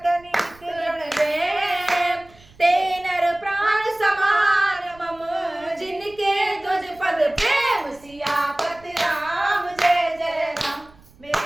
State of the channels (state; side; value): noise; right; rumble, 26 dB below the sound